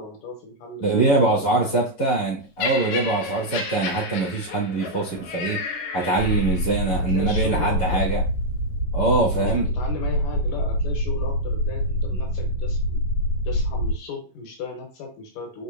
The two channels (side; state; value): right; late; 11 ms